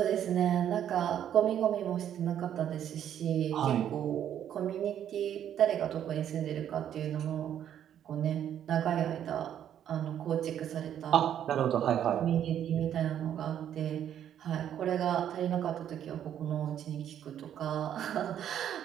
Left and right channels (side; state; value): left; quieter; 10.1 dB